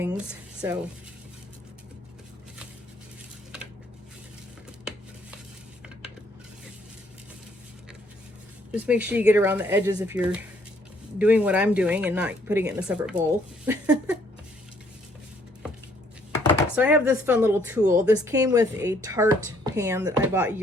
So just make sure you get around the edges if you're doing what I'm doing and not putting it in a separate bowl. So I have this fun little tool. This came with a tart pan that I bought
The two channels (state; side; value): normal; both; correlation 0.65